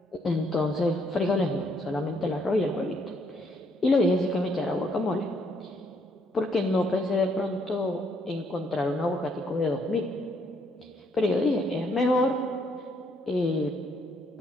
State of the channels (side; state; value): both; normal; correlation 0.70